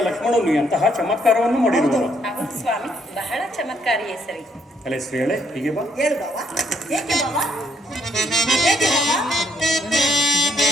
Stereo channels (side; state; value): both; normal; correlation 0.70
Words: ಲಕ್ಷ್ಮಣನು ಎಂತಹ ಚಮತ್ಕಾರವನ್ನು ಮಾಡಿರುವುದು? ಹೌದು ಸ್ವಾಮಿ, ಬಹಳ ಚಮತ್ಕಾರಿಯೇ ಸರಿ. ಅಲೆ ಶ್ರೀಯಳೆ, ಹೀಗೆ ಬಾ. ಹೇಳು ಬಾವ. ಏಕೆ ಬಾವ? ಏಕೆ ಬಾವ?